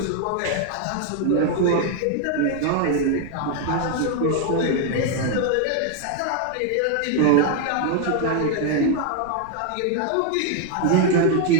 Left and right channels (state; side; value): different; both; correlation 0.01